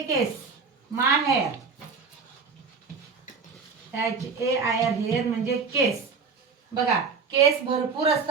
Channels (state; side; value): quieter; left; 5.1 dB